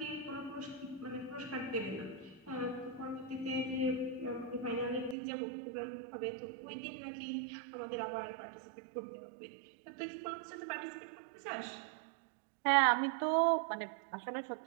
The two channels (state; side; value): drops out; left; at 5.2 s